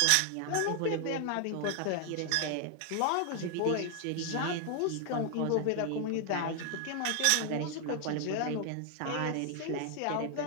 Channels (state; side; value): different; both; correlation 0.00